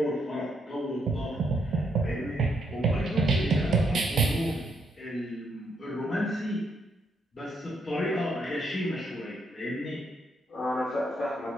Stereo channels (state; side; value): normal; both; correlation 0.76